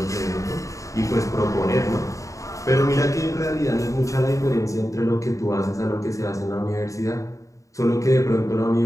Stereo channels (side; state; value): right; late; 0.16 ms